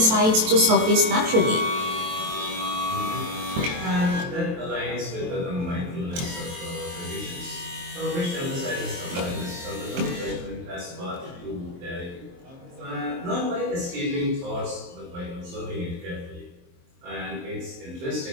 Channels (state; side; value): late; left; 23 ms